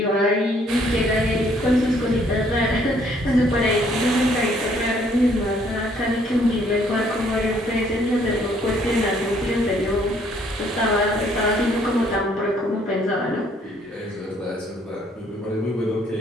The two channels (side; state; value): both; normal; correlation 0.64